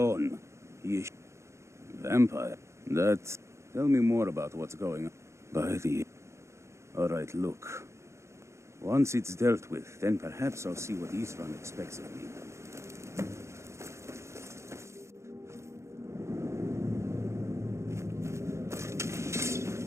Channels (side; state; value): left; late; 0.14 ms